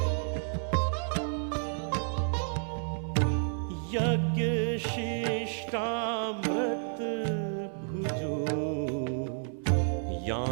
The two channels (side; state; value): left; silent; 57 dB below the other